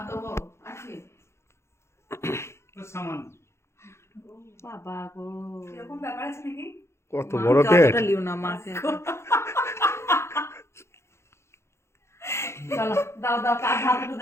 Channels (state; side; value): late; right; 0.13 ms